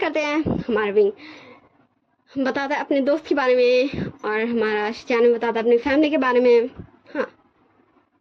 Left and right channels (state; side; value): identical; both; correlation 1.00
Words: हैं। हमारा विंग बताता है अपने दोस्त के बारे में और हमारा शिचान बताता है अपनी फैमिली के बारे में। हाँ